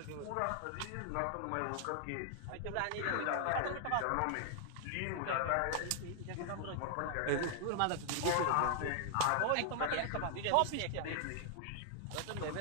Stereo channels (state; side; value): different; both; correlation 0.00